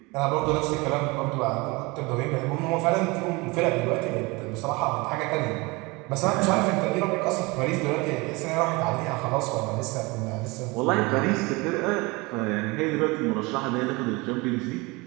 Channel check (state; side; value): quieter; left; 24.9 dB